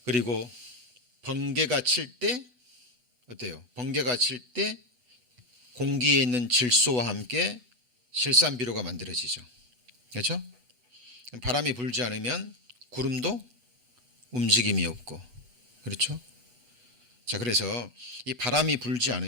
그리고 번개가 칠 때 어때요? 번개가 칠 때 공기에 있는 질소와 함께 실산비료가 만들어지죠. 그렇죠? 바람이 불지 않으면 구름도 움직임이 없고, 그렇죠? 자, 그래서 이 바람이 불지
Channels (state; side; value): late; left; 8.1 ms